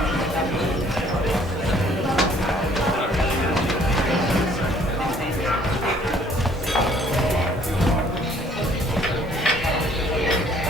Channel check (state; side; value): normal; both; correlation 0.60